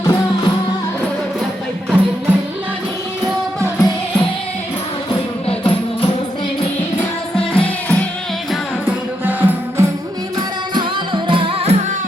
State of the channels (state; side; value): normal; both; correlation 0.81